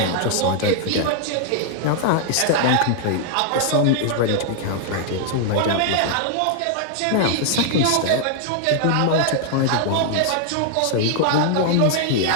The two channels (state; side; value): different; both; correlation 0.00